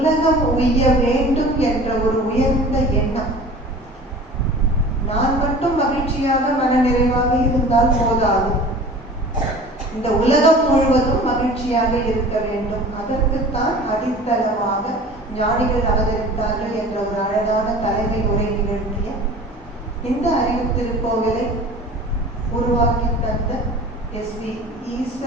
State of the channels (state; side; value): normal; both; correlation 0.42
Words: உய்ய வேண்டும் என்ற ஒரு உயர்ந்த எண்ணம். நான் மட்டும் மகிழ்ச்சியாக மனநிறைவாக இருந்தால் போதாது. இந்த உலகம் முழுவதும் மகிழ்ச்சியாக இருக்க வேண்டும். அதற்குத்தான் அடித்தளமாக ஞானிகள் அவதரித்தார்கள் என்ற ஒரு அழகான தலைமை உரை நிகழ்த்திய இந்த அறிவு திருக்கோவிலை உருவாக்கி தந்த எஸ்.பி.